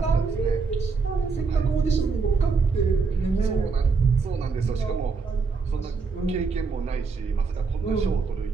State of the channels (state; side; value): quieter; left; 4.8 dB